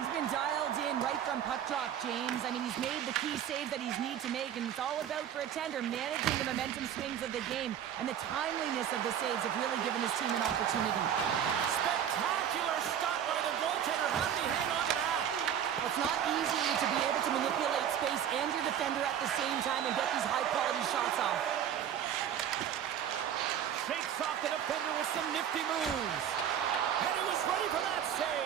been dialed in right from puck drop, James. I mean, he's made the key save that he's need to make, and it's all about, for a tender, managing the momentum swings of the game, and the timeliness of the saves have really given his team an opportunity. Spectacular stop by the goaltender. How did he hang on to that? It's not easy to be able to manipulate space and your defender at the same time and get these high-quality shots off. Shakes off the defender with some nifty moves. And he was ready for that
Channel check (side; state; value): left; quieter; 9.5 dB